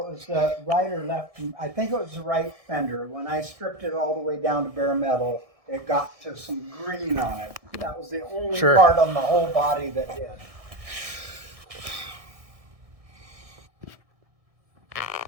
was the right or left. I think it was the right fender. When I stripped it all the way down to bare metal, it got to some green on it. That was the only part on the whole body that did.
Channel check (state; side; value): late; left; 1.7 ms